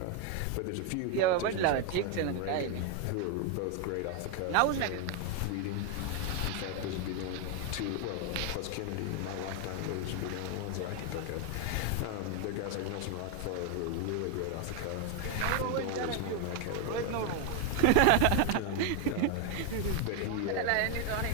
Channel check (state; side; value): different; both; correlation 0.01